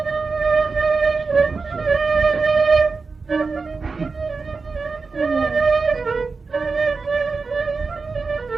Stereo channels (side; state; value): left; quieter; 4.4 dB